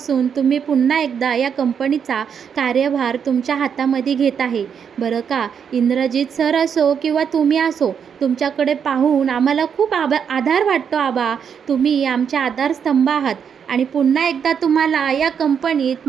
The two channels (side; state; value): left; quieter; 7.4 dB